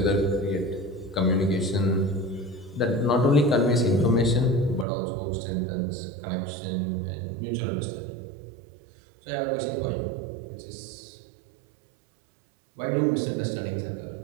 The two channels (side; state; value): left; drops out; at 4.9 s